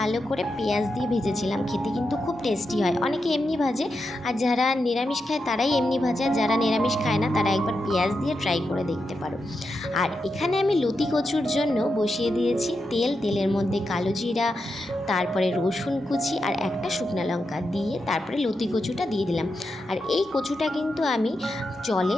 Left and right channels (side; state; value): both; normal; correlation 0.87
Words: করে পেঁয়াজ দিয়ে ভেজেছিলাম, খেতে কিন্তু খুব টেস্টি হয়। অনেকে এমনি ভাজে, আর যারা নিরামিষ খায় তারাই এমনি ভাজে, আর যারা নিরামিষ খায় না তারা একবার পেঁয়াজ দিয়ে ট্রাই করে দেখতে পারো। আর এখানে আমি লতি কচুর জন্য বসিয়ে দিয়েছি তেলের মধ্যে কালো জিরা, তারপরে রসুন কুচি আর একটা শুকনো লঙ্কা দিয়ে তারপরে লতি কচুটা দিয়ে দিলাম। আর এই কচুটা কিন্তু আমি জলে